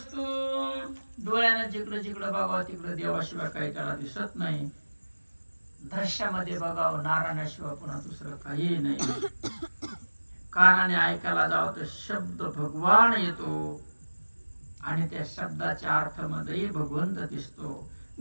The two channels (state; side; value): inverted; both; correlation -1.00